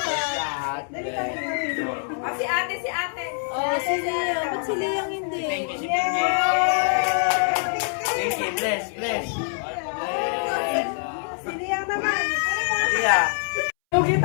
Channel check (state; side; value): silent; right; 62 dB below the other